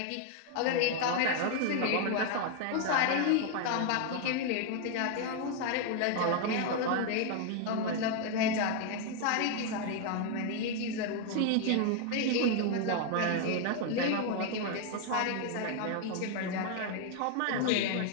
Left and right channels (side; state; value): both; different; correlation 0.00